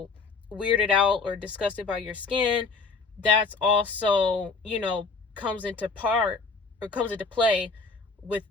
weirded out or disgusted by your skin. That's also, comes into play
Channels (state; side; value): quieter; right; 4.4 dB